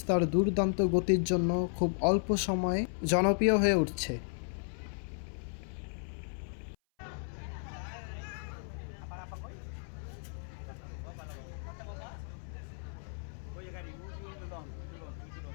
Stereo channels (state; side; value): silent; right; 55 dB below the other